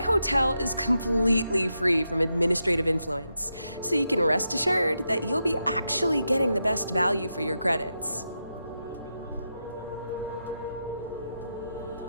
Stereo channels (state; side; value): inverted; both; correlation -0.86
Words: is completely free from administrative influence, so you can rest assured that you'll be actually getting the best value for your credits.